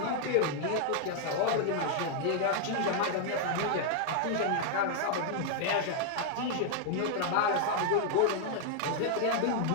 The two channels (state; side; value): different; both; correlation 0.00